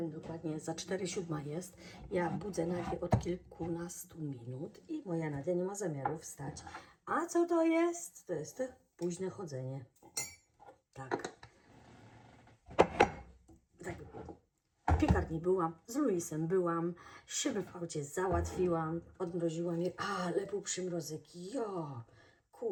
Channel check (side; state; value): both; identical; correlation 1.00